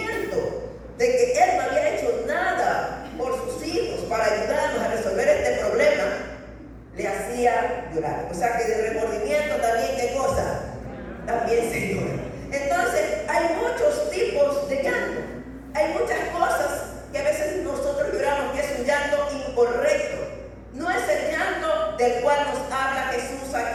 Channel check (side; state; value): both; identical; correlation 1.00